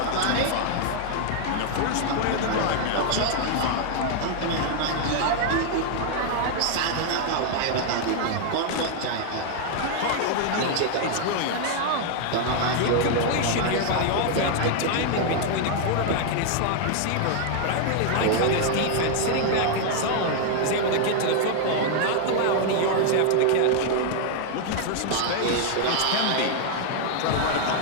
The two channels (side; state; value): both; different; correlation 0.00